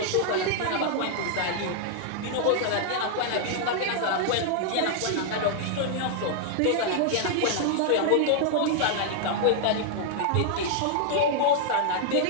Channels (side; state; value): both; different; correlation -0.01